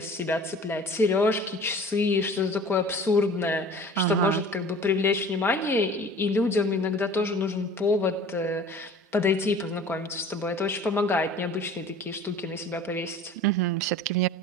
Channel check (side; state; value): both; normal; correlation 0.44